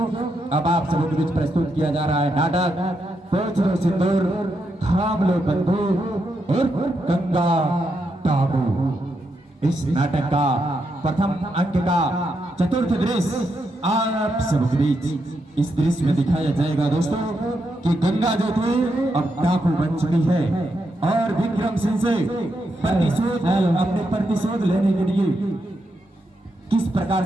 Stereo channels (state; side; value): normal; both; correlation 0.82